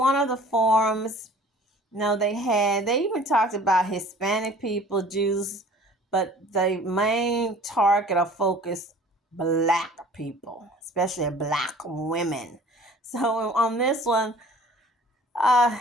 of the forums, they even talked about Hispanic people, Jews, but the main target or focus, black people, especially black women. So on this one,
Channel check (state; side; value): normal; both; correlation 0.49